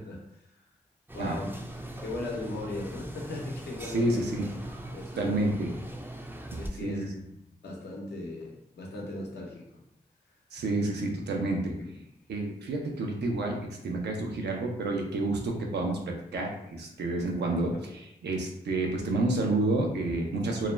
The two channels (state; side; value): normal; both; correlation 0.60